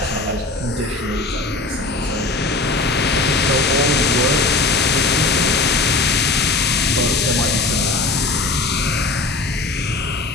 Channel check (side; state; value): right; quieter; 3.4 dB